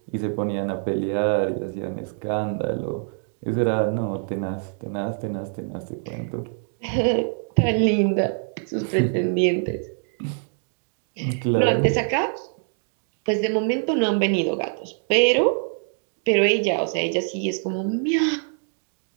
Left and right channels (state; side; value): silent; left; 58 dB below the other